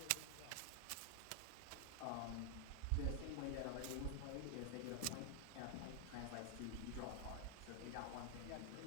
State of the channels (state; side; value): different; both; correlation 0.00